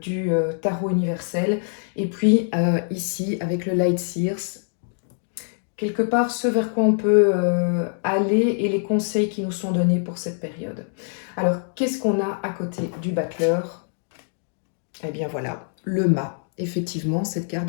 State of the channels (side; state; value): right; silent; digital silence